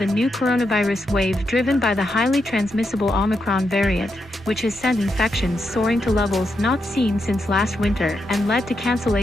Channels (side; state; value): both; normal; correlation 0.84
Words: a new coronavirus wave driven by the highly transmissible Omicron variant, which has sent infections soaring to levels not seen since last winter and led to